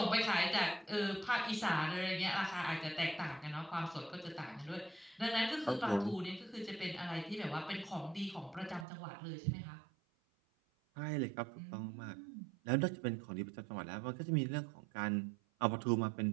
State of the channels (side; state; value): left; drops out; at 8.8 s